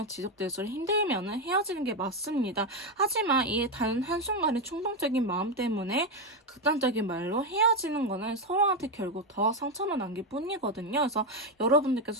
지속될수록 힘들면은 헤어지는 게 맞습니다. 하지만 이 단 한순간의 충동적인 마음 때문에 극단적인 말로 헤어지는 거는 서로한테 결국 더 상처만 남길 뿐이거든요. 그래서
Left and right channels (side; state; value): both; normal; correlation 0.08